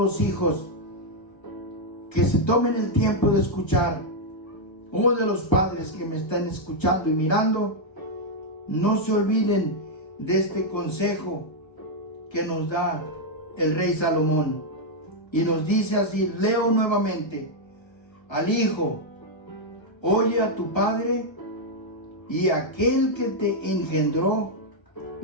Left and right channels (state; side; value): late; right; 1.3 ms